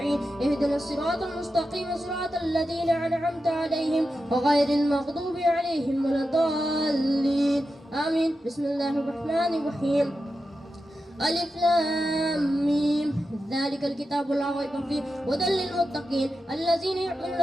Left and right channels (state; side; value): normal; both; correlation 0.90